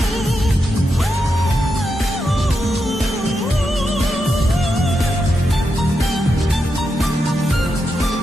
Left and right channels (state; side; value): normal; both; correlation 0.85